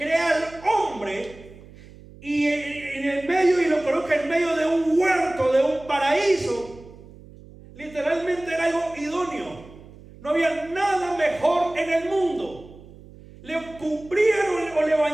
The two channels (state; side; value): noise; right; hum, 20 dB below the sound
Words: al hombre y en el medio, y lo coloca en medio de un huerto, de un paraíso. Literalmente era algo idóneo. No había nada mejor en el mundo. Le cumplieron o le